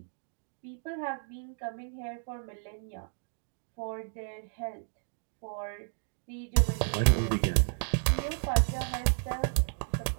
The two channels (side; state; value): left; silent; digital silence